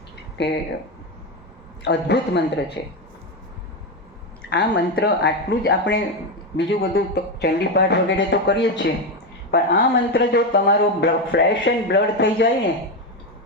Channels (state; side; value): normal; both; correlation 0.11